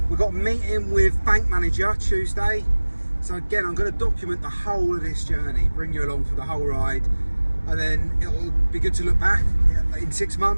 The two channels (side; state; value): both; inverted; correlation -1.00